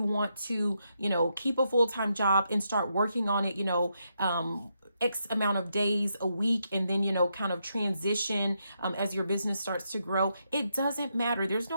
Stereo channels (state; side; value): inverted; both; correlation -0.81